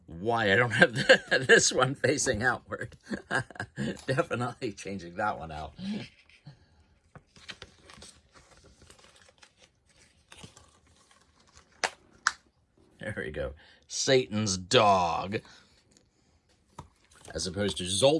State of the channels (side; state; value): both; identical; correlation 1.00